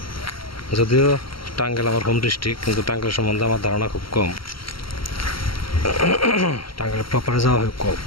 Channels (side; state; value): right; late; 0.74 ms